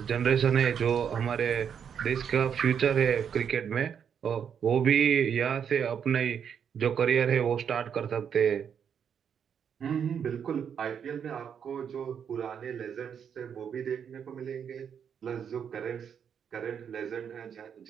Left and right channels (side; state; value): left; quieter; 7.7 dB